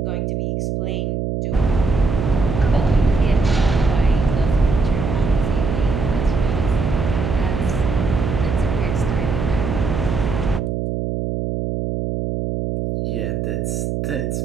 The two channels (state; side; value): noise; right; hum, 2 dB below the sound